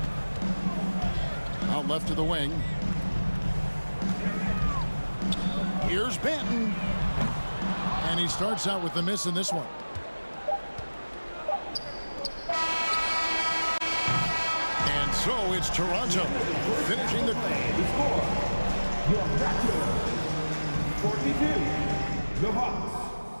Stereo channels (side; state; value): both; inverted; correlation -1.00